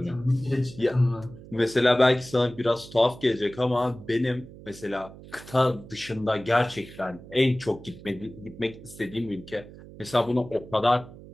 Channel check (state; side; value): noise; right; hum, 17 dB below the sound